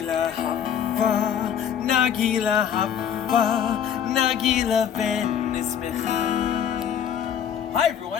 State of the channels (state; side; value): quieter; right; 8.7 dB